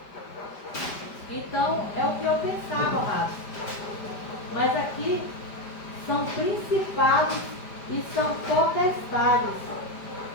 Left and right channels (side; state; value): right; late; 5.0 ms